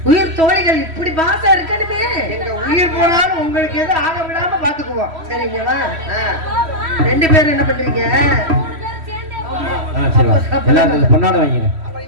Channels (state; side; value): late; left; 3.1 ms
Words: உயிர் தோழிகள் இப்படி பாசம் இருக்கணுமே. எங்க உயிர் போனாலும் உங்களுக்கு எதுவும் ஆக விடாம பாத்துக்குவோம். சரிங்களா? 2 பேரும் என்ன பண்றீங்க? 3 பேரும் சேர்ந்தே போறோம். சரி எல்லாரும் பொன்னாட வாங்கிங்க. அப்புறம்